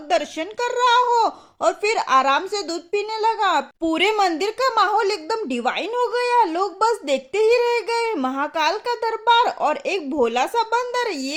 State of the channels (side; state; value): both; identical; correlation 1.00